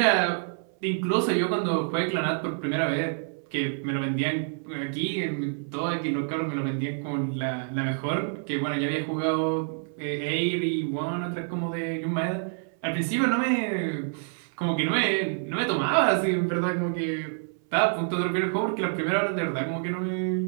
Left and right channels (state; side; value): silent; left; 60 dB below the other